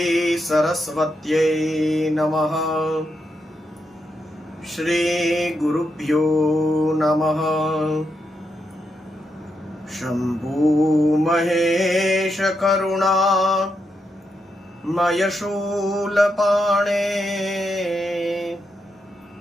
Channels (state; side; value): normal; both; correlation 0.83